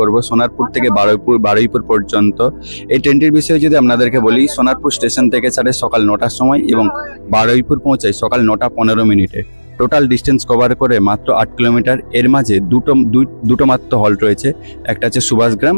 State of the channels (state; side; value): inverted; both; correlation -1.00